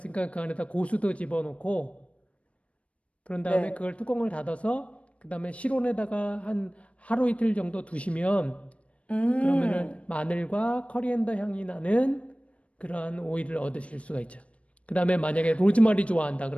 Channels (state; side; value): late; right; 0.063 ms